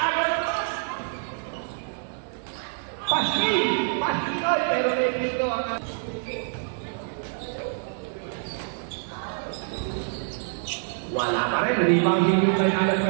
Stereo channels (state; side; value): silent; left; digital silence